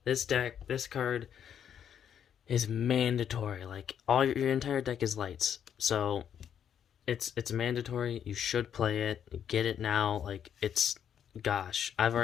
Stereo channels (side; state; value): right; quieter; 8.8 dB